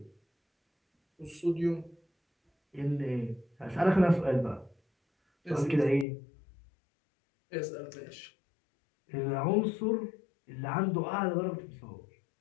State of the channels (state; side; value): drops out; right; at 6.1 s